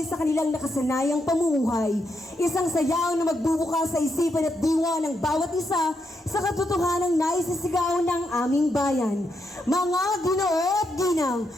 sa kanilang nakasanayang pamumuhay. Isang sayaw na magbubukas sa isipan at diwa ng bawat isa sa katotohanang naisisigaw ng aming bayan. Mga Ginoo at Ginang,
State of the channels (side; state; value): both; normal; correlation 0.81